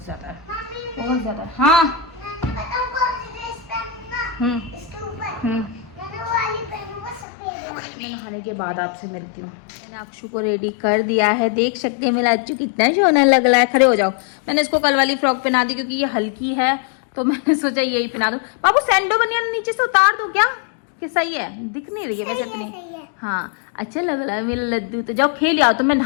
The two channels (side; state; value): right; drops out; at 7.2 s